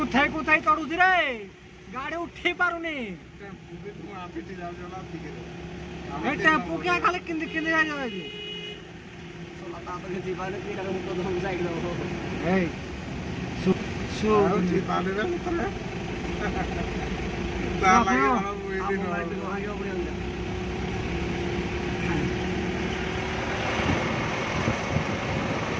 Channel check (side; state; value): both; identical; correlation 1.00